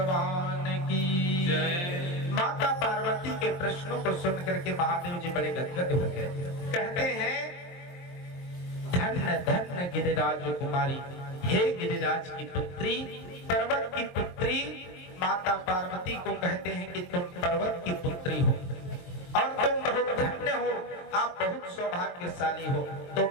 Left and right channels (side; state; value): right; late; 23 ms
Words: की जय। माता पार्वती के प्रश्नों को सुनकर के महादेव जी बड़े गदगद हो गए। कहते हैं धन्य धन्य गिरिराज कुमारी, हे गिरिराज की पुत्री, पर्वत की पुत्री। माता पार्वती को कहते हैं कि तुम पर्वत की पुत्री हो और तुम बहुत धन्य हो, आप बहुत सौभाग्यशाली हो,